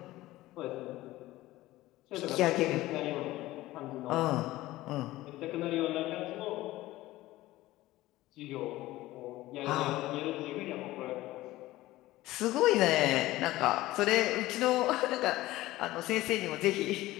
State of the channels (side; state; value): right; quieter; 17.1 dB